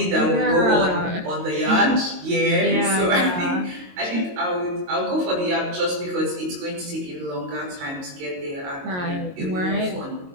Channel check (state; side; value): late; left; 22 ms